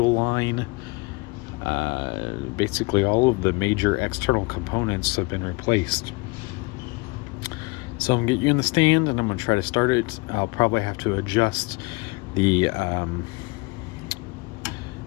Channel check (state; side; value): quieter; right; 26.4 dB